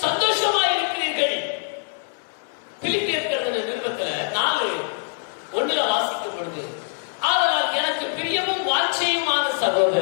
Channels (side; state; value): right; silent; digital silence